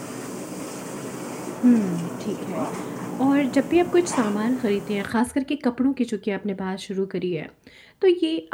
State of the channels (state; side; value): identical; both; correlation 1.00